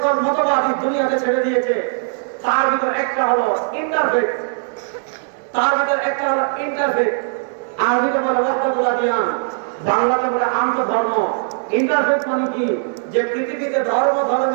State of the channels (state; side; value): silent; left; digital silence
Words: মতবাদী দুনিয়াতে ছেড়ে দিয়েছে, তার ভিতর একটা হলো ইন্টারফেক্ট, তার ভিতর একটা হলো ইন্টারফেক্ট। আরবিতে বলে ওয়াহদাতুল আদিয়ান, বাংলাতে বলে আন্তঃধর্ম। ইন্টারফেক্ট মানে কি? যে পৃথিবীতে